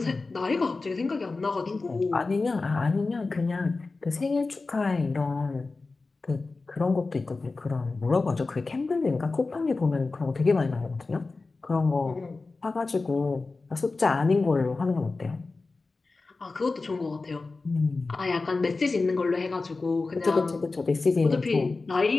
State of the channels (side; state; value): right; quieter; 3.7 dB